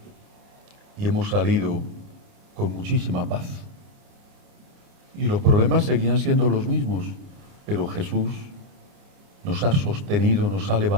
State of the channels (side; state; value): left; late; 29 ms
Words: y hemos salido con muchísima paz? Y los problemas seguían siendo los mismos, pero Jesús nos ha sostenido, nos ha